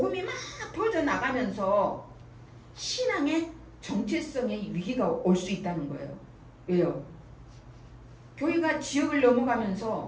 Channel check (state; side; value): identical; both; correlation 1.00